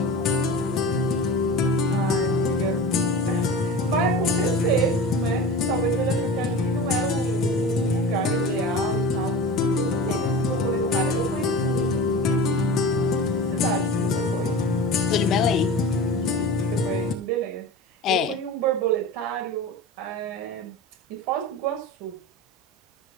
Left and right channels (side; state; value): both; normal; correlation 0.33